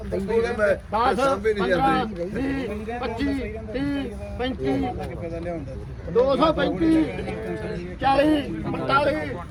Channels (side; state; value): both; identical; correlation 1.00